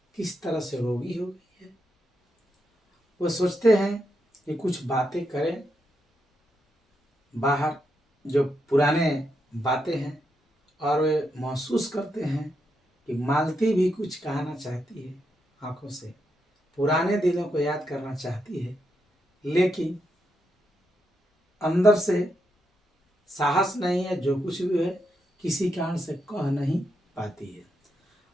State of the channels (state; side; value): normal; both; correlation 0.82